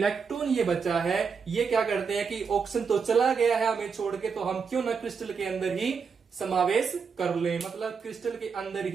ये बचा है, ये क्या करते हैं कि ऑक्सीजन तो चला गया है हमें छोड़ के, तो हम क्यों ना क्रिस्टल के अंदर ही समावेश कर ले, मतलब क्रिस्टल के अंदर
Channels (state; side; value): quieter; left; 5.8 dB